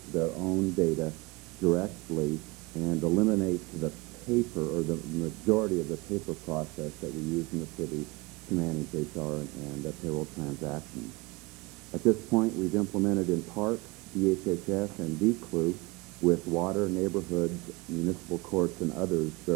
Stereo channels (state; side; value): quieter; left; 24.7 dB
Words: their own data directly and eliminate the paper, or the majority of the paper process that we use in the city to manage HR and payroll transactions. At this point, we've implemented in parks, DHHS, and DCLU with water, neighborhoods, municipal courts, and others